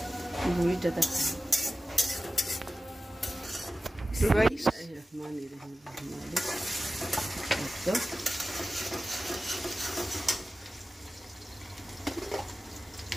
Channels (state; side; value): normal; both; correlation 0.95